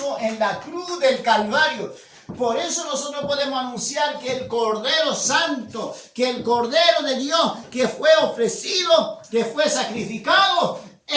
en la cruz del Calvario. Por eso nosotros podemos anunciar que el Cordero Santo, que el Cordero de Dios, que fue ofrecido, que fue sacrificado,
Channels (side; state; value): both; identical; correlation 1.00